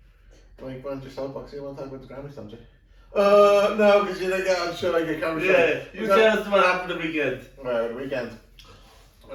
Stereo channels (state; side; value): identical; both; correlation 1.00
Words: Why don't your soapbox? You want to talk about the Grammys, don't you? No, because you're like, I'm sure I get camera shot. Yeah, you tell us what happened the weekend. Well, the weekend.